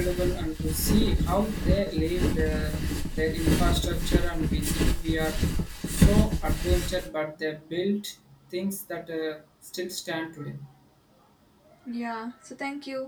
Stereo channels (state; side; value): identical; both; correlation 1.00